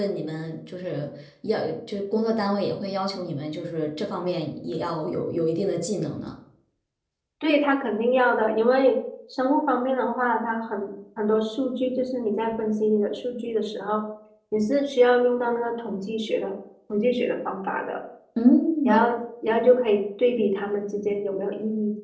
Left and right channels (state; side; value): identical; both; correlation 1.00